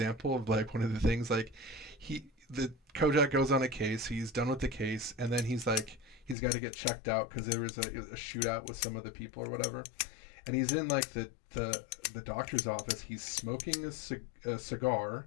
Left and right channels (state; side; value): drops out; right; at 6.4 s